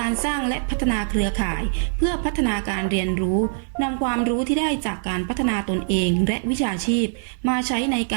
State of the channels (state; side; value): silent; left; digital silence